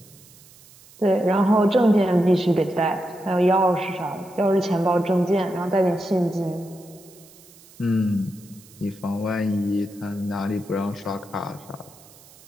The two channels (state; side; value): noise; right; hiss, 24 dB below the sound